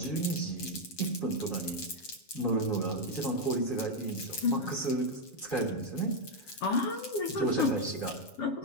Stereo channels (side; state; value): right; late; 7.2 ms